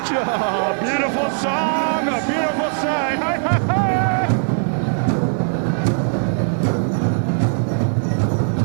Beautiful song, a beautiful sight. Hi, hi, hi.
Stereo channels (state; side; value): silent; left; digital silence